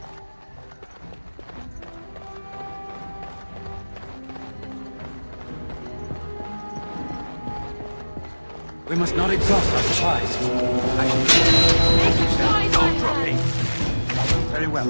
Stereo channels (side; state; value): both; inverted; correlation -1.00